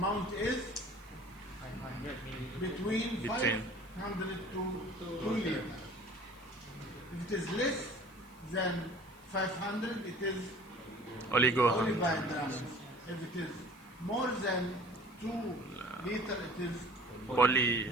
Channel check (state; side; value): noise; left; hiss, 27 dB below the sound